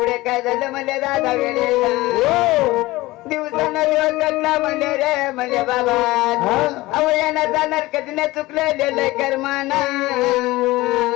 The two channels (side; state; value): right; quieter; 19.4 dB